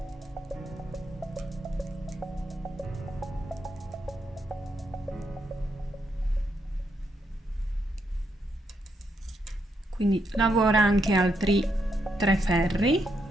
Quindi lavora anche altri 3 ferri.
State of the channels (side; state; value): both; normal; correlation 0.79